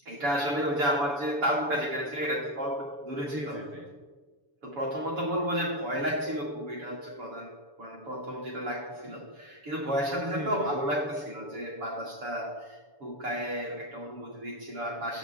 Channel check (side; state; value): left; late; 7.0 ms